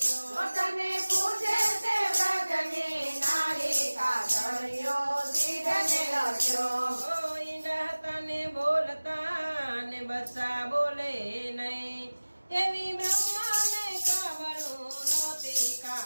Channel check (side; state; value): both; inverted; correlation -1.00